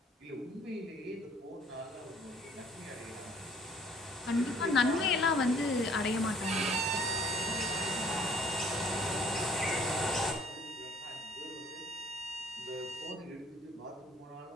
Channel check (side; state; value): both; normal; correlation 0.57